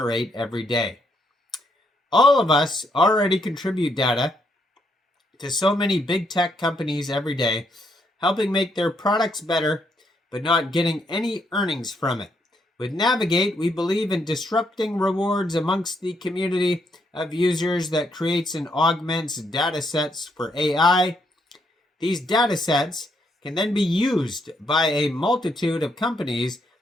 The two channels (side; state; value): both; normal; correlation 0.75